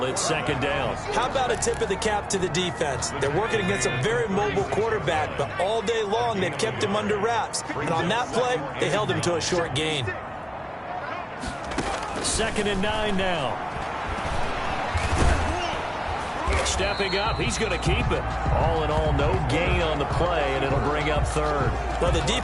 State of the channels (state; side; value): identical; both; correlation 1.00